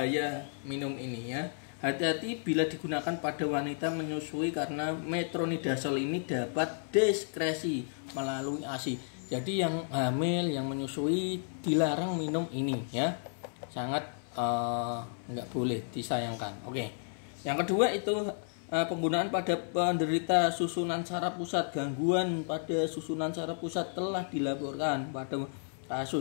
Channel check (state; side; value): silent; right; 56 dB below the other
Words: minum ini ya. Hati-hati bila digunakan pada wanita menyusui karena metronidazole ini dapat diskresi melalui ASI. Jadi yang hamil, yang menyusui dilarang minum ini ya. Sangat nggak boleh, disayangkan. Oke. Yang kedua itu penggunaan pada penderita susunan saraf pusat. Gangguan pada susunan saraf pusat telah dilaporkan pada